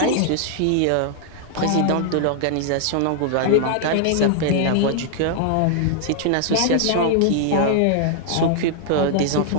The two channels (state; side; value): different; both; correlation 0.00